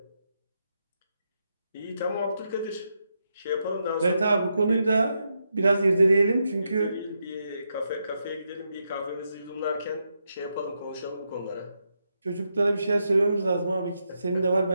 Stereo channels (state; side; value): inverted; both; correlation -0.83